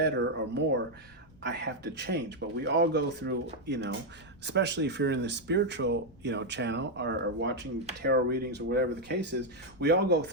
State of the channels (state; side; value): noise; right; rumble, 27 dB below the sound